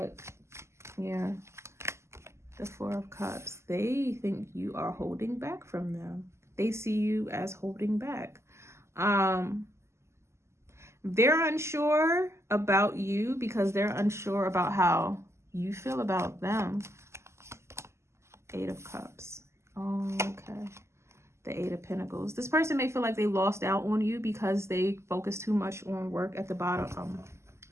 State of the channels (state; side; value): late; left; 0.13 ms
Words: yeah. The 4 of Cups. They think you are holding back from them. They see you as holding back. They're unsure about you because they're unsure about how you feel about them. 8 of Cups. Oh, okay. The 8 of Pentacles. This person may feel like they lost out on you because they focus too much on work at the bottom,